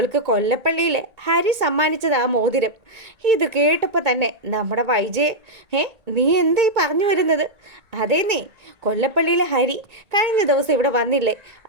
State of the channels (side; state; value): left; late; 1.8 ms